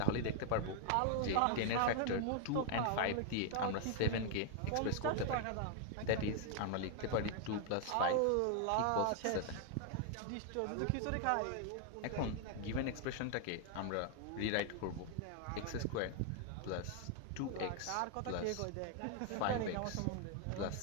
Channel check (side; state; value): both; different; correlation 0.00